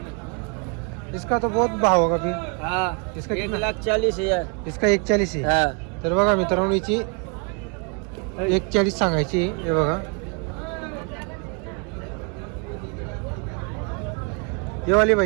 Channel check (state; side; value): quieter; left; 36.3 dB